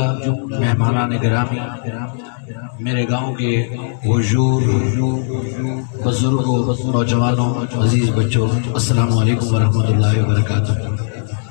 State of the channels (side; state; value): right; silent; 67 dB below the other